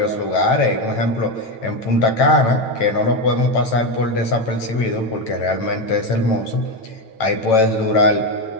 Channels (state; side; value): late; right; 8.9 ms